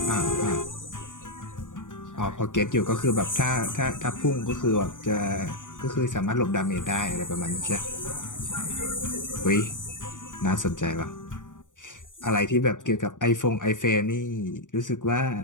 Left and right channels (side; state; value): right; late; 0.87 ms